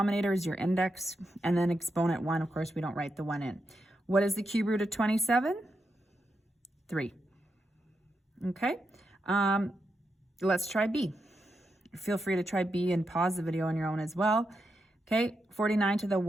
is your index, and then exponent 1, of course, we don't write the 1 in. What is the cube root of 27? 3. Okay, let's try B. Feel free to try B and pause the video on your own as well. Okay, 49 to the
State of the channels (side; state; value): both; normal; correlation 0.85